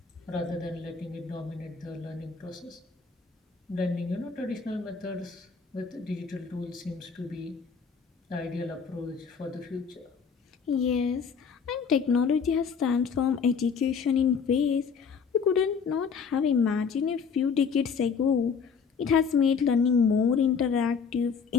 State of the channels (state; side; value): quieter; right; 5.9 dB